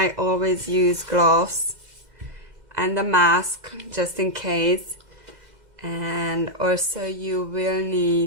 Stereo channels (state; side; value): late; left; 2.0 ms